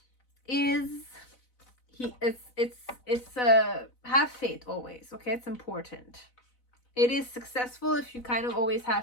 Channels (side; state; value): right; late; 4.0 ms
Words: is have faith always. Okay, it's important. It is successful if you kind of always